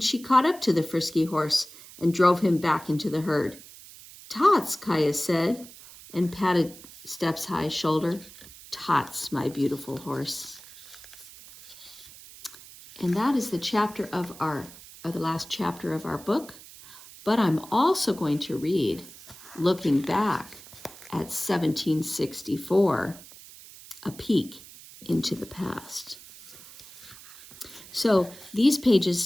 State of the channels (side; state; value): right; noise; hiss, 18 dB below the sound